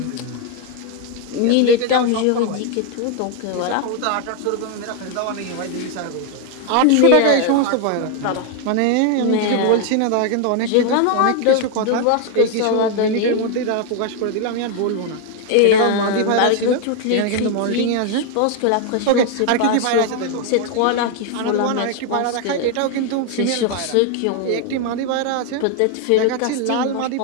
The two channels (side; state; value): both; different; correlation 0.01